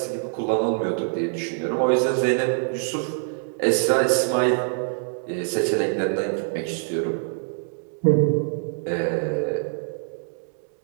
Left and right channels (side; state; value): left; silent; digital silence